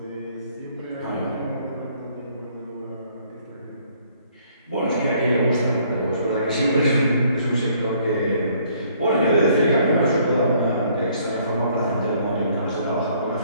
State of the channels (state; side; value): inverted; both; correlation -0.63